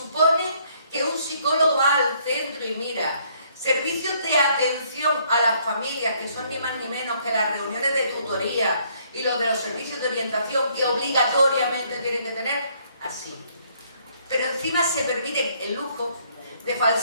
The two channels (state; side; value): inverted; both; correlation -0.66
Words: que un psicólogo va al centro y mira, servicios de atención a las familias, que son ni más ni menos que las reuniones de tutoría y los de los servicios de orientación que obligatoriamente tienen que tener? Así. Pero encima se permite el lujo de